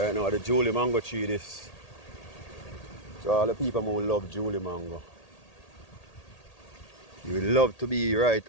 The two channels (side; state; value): right; late; 1.8 ms